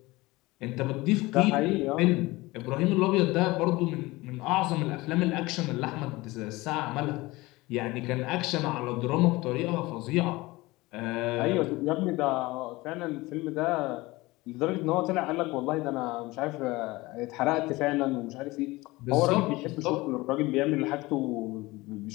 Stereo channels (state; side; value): quieter; right; 21.0 dB